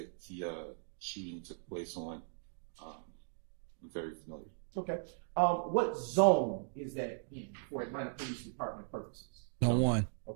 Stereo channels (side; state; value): left; silent; digital silence